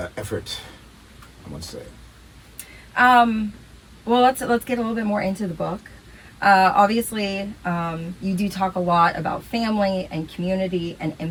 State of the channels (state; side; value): identical; both; correlation 1.00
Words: effort, I must say. Well, let's get a little bit more into the book. Obviously, you do talk a lot about family and community and